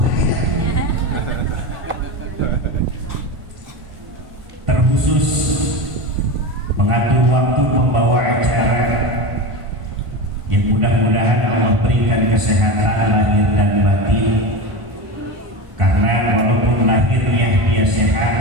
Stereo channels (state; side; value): late; left; 1.5 ms